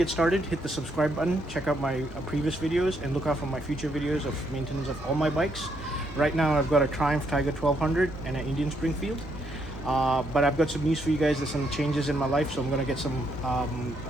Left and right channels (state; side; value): normal; both; correlation 0.75